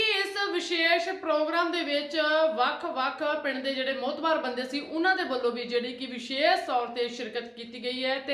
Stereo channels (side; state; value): both; identical; correlation 1.00